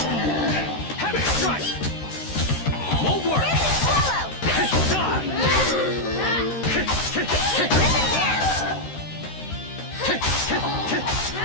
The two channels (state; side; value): late; right; 13 ms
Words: Heavy strike! Won't work!